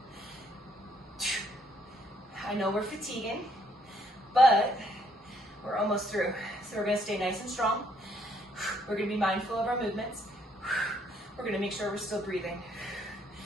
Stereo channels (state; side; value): normal; both; correlation 0.68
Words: I know we're fatiguing, but we're almost through. So we're going to stay nice and strong. We're going to be mindful of our movements. We're going to make sure we're still breathing.